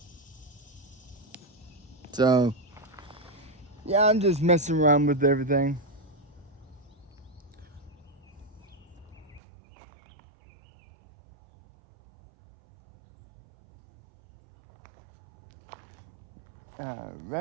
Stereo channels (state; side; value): drops out; left; at 9.4 s